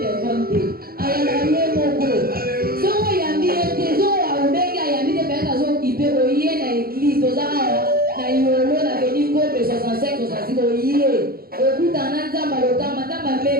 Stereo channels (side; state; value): left; late; 0.43 ms